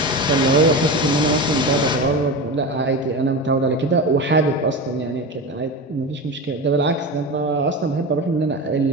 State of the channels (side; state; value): both; normal; correlation 0.24